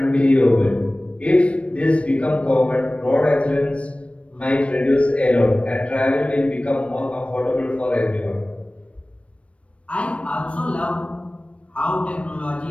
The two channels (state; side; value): late; right; 0.062 ms